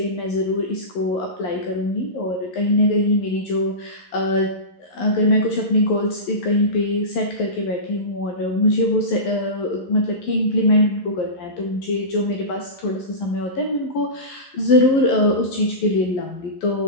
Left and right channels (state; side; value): late; right; 11 ms